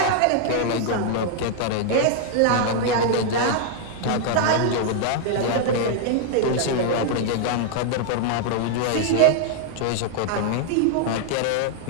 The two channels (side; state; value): both; different; correlation 0.00